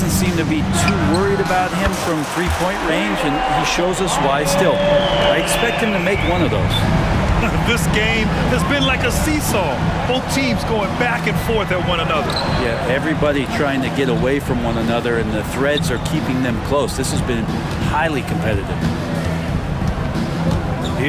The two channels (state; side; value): identical; both; correlation 1.00